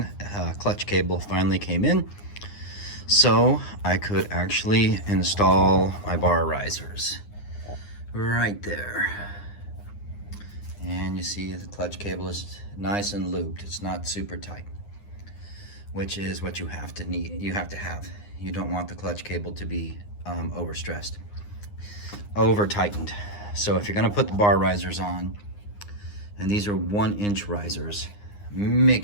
clutch cable finally came in, so I could actually install my bar risers right there. And you see the clutch cable is nice and looped. It's not super tight, which is what you have to have. You don't want the clutch cable to be overstressed, over tightened. So if you're going to put the bar risers on, and these are 1-inch risers,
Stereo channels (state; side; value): late; right; 9.7 ms